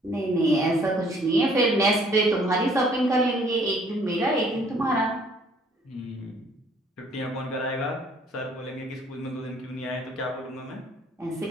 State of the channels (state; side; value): normal; both; correlation 0.60